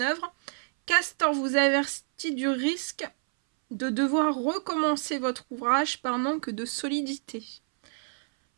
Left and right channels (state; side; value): silent; left; 59 dB below the other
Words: œuvre, Castor vous avertit du risque de devoir recommencer votre ouvrage par manque de solidité.